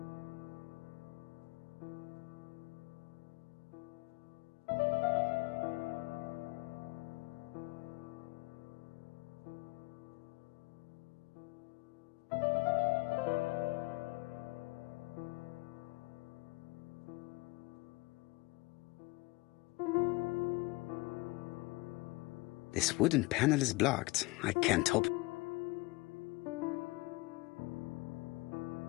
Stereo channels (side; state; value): right; quieter; 23.6 dB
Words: This wooden panel is blocked. I can't open.